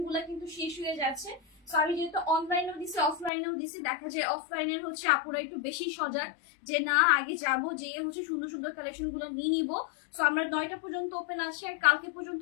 গুলা কিন্তু শেষ হয়ে যাচ্ছে। সো আমি যেহেতু অনলাইনেও দিছি অফলাইনেও দিছি, দেখা যায় অফলাইনের হচ্ছে আপুরা একটু বেশি সজাগ, যে না আগে যাবো, যে হচ্ছে সুন্দর সুন্দর কালেকশন গুলো নিয়ে নিবো। সো আমরা 9টা পর্যন্ত ওপেন আছে, আর কালকে পর্যন্ত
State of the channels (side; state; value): right; drops out; at 3.3 s